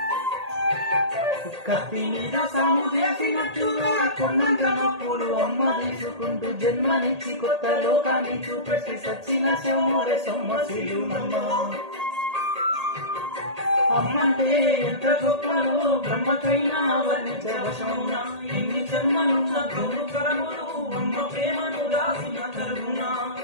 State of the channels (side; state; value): left; late; 1.8 ms